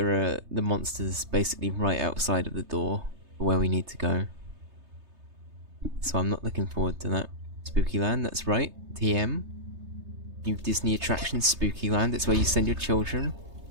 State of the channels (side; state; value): left; late; 3.3 ms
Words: are the monsters basically right outside of the door for where we need to go. So I'm not looking forward to that. Spooky land, that's right. TM. New Disney attraction, Spooky Land. It's where you send your children.